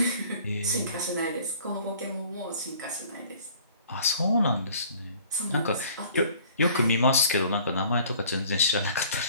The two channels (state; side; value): inverted; both; correlation -0.52